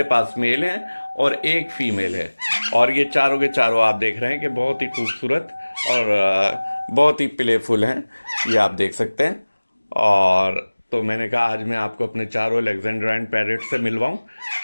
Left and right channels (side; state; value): both; inverted; correlation -1.00